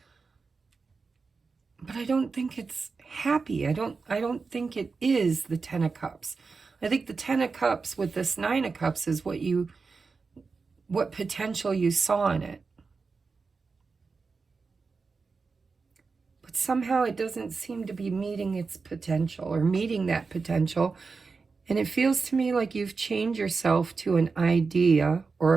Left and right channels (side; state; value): left; quieter; 4.6 dB